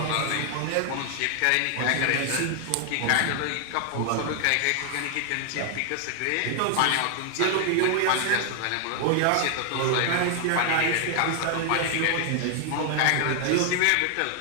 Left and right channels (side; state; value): both; different; correlation 0.00